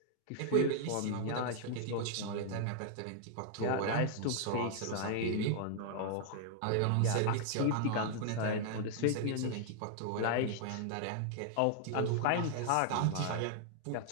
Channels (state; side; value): different; both; correlation -0.01